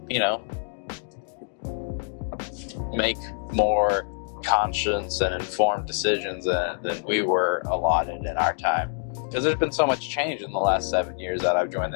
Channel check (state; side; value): silent; right; 61 dB below the other